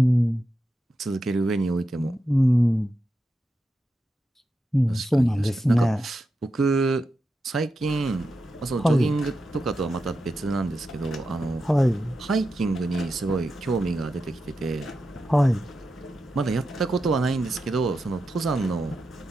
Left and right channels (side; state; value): both; normal; correlation 0.89